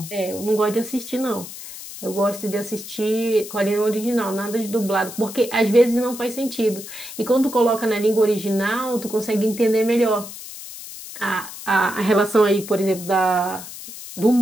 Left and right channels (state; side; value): noise; left; hiss, 12 dB below the sound